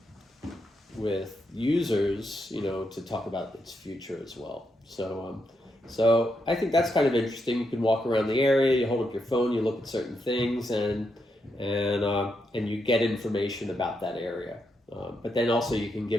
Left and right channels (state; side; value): normal; both; correlation 0.82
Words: with users, to talk about its future as well. So I think that's kind of interesting. You can walk around the area, you hold up your phone, you look at certain things, and you get information about that area. But then also you can